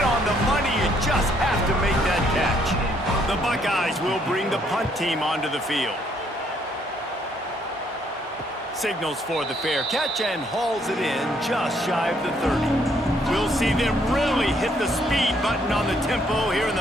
on the money. You just have to make that catch. The Buckeyes will bring the punt team onto the field. Signals for the fair catch and hauls it in just shy of the 30. We'll see them really hit the speed button on the tempo here in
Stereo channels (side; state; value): both; normal; correlation 0.69